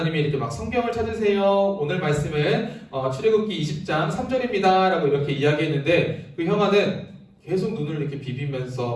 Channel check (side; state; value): both; identical; correlation 1.00